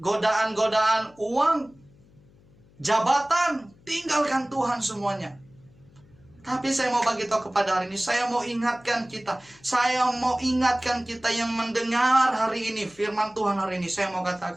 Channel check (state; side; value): noise; left; hum, 28 dB below the sound